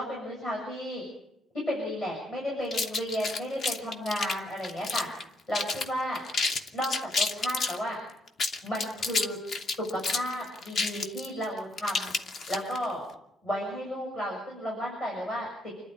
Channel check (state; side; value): normal; both; correlation 0.73